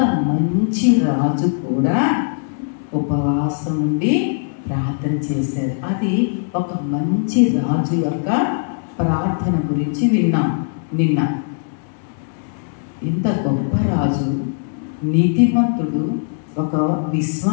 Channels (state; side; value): silent; right; digital silence